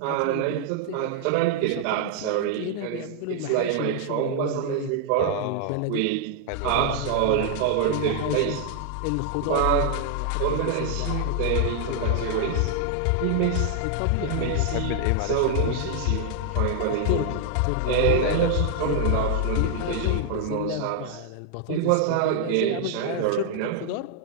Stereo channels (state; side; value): different; both; correlation 0.00